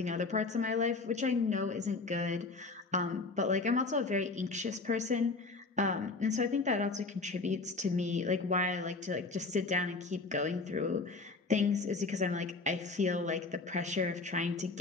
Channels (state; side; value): quieter; right; 3.8 dB